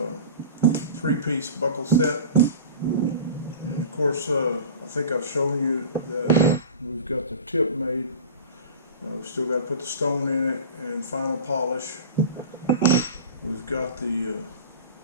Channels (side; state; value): both; inverted; correlation -0.36